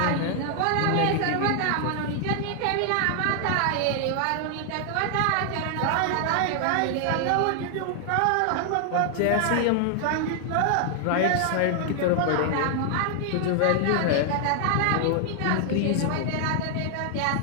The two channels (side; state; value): both; different; correlation 0.00